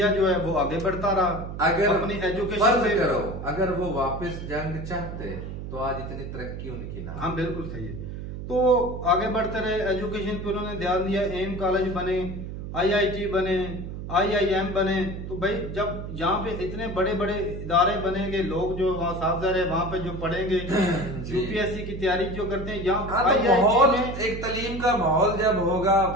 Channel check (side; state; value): right; noise; hum, 8 dB below the sound